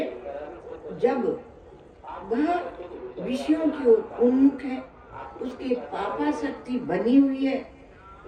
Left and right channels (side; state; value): both; identical; correlation 1.00